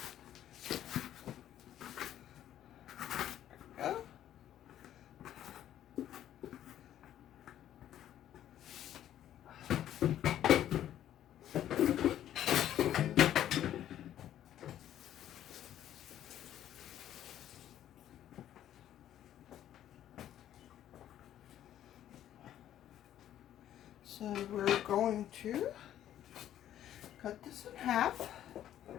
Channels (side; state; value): right; quieter; 11.6 dB